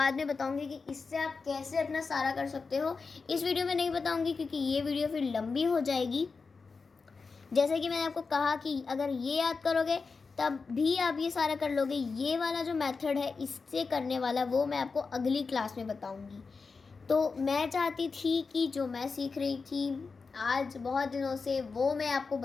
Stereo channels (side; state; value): right; quieter; 4.6 dB